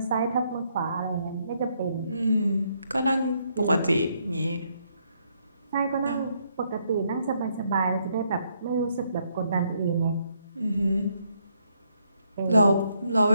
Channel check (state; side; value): inverted; both; correlation -0.74